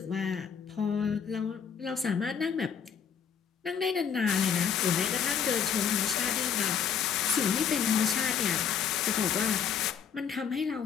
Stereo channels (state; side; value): quieter; right; 7.5 dB